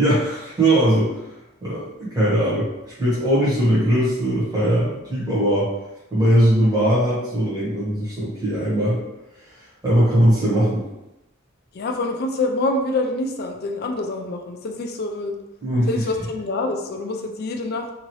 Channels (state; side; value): normal; both; correlation 0.59